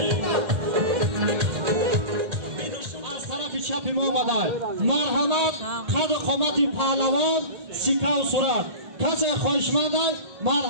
از طرف چپی ما آمده مرحمت قد قامت پهلوان سیکه و صورت کسی خواهشمند است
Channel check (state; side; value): late; left; 1.8 ms